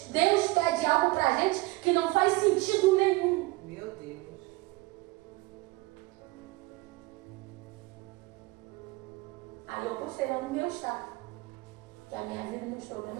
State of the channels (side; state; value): left; quieter; 21.2 dB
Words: Deus pede algo pra gente que não faz sentido nenhum. Meu Deus. Aí eu postei lá no meu estado que a minha vida e meus